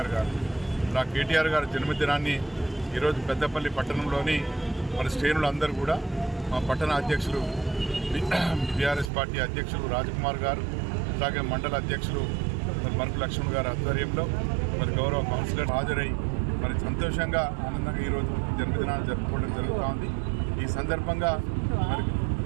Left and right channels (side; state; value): left; drops out; at 9.1 s